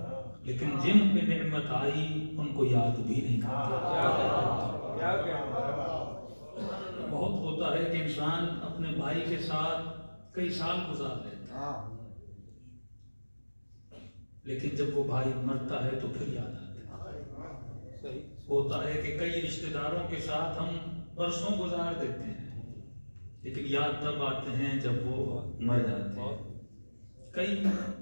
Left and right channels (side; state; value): both; inverted; correlation -1.00